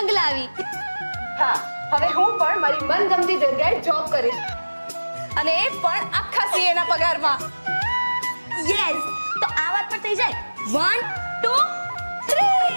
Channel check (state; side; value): inverted; both; correlation -1.00